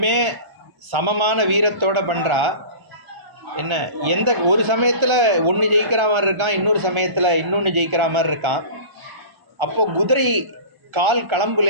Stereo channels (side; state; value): left; late; 1.3 ms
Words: சமமான வீரத்தோடு பண்ணுறா. என்ன ஒரு சமயத்தில் ஒன்று ஜெயிக்கிற மாதிரி இருக்கான், இன்னொரு சமயத்தில் இன்னொன்று ஜெயிக்கிற மாதிரி இருக்கான். அப்போ குதிரை கால்